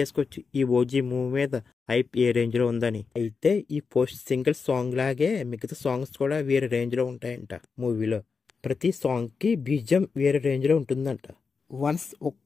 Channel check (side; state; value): right; quieter; 5.1 dB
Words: ఈ ఓజీ మూవీ మీద హైప్ ఏ రేంజ్ లో ఉందని. అయితే ఈ పోస్ట్ సింగిల్ సాంగ్ లాగే మిగతా సాంగ్స్ కూడా వేరే రేంజ్ లో ఉంటాయంట. మూవీలో ప్రతి సాంగ్ కి బీజిఎం వేరే రేంజ్ లో ఉంటుందంట.